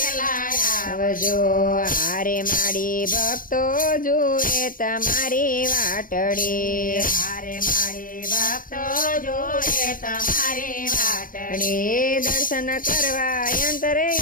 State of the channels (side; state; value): right; late; 0.40 ms